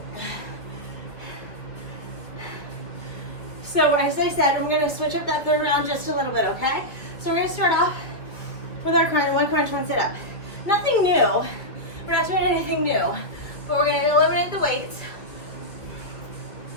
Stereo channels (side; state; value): right; late; 2.5 ms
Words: So as I said, we're gonna switch up that 3rd round just a little bit, okay? So we're gonna start off with our one crunch, one sit up. Nothing new. We're not doing anything new, but we're gonna eliminate the weights,